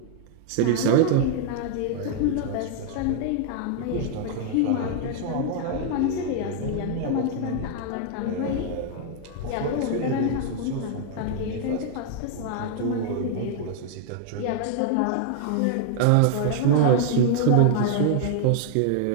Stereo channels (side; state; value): both; different; correlation 0.00